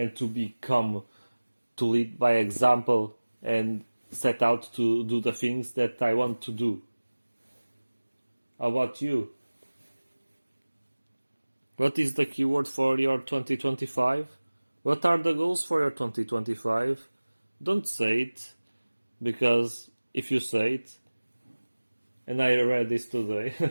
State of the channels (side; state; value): both; inverted; correlation -1.00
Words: to become, to lead by example and set out to do the things that I want to do. How about you? What is the keyword for your 2025? What are the goals for your 2025? Don't say it, because if you say it, and I read this today,